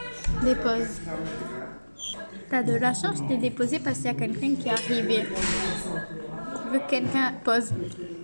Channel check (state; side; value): inverted; both; correlation -1.00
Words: Dépose. T'as de la chance, je t'ai déposé parce qu'il y a quelqu'un qui est arrivé. Je veux que quelqu'un pose.